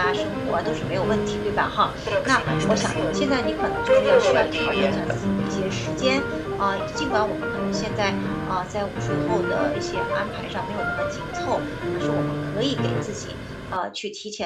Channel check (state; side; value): identical; both; correlation 1.00